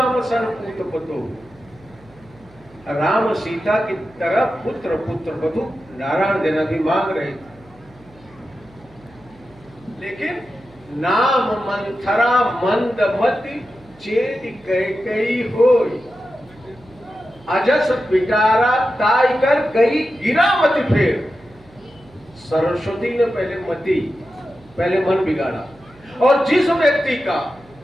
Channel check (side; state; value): right; noise; hum, 26 dB below the sound